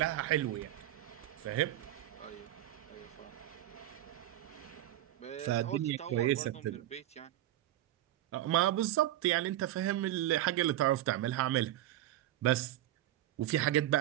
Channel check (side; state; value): left; quieter; 13.9 dB